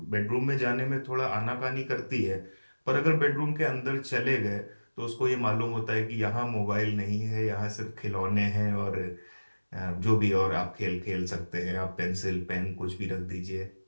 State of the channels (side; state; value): both; inverted; correlation -1.00